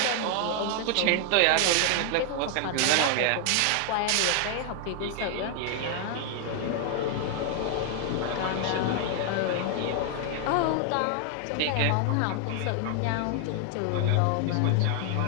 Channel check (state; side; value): different; both; correlation 0.00